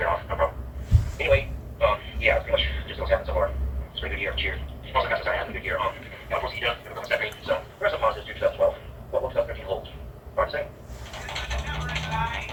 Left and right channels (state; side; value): identical; both; correlation 1.00